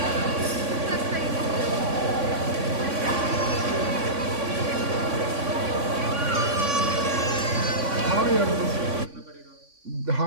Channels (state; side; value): late; left; 3.5 ms